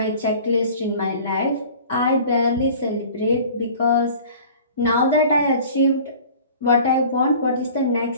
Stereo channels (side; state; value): both; inverted; correlation -0.45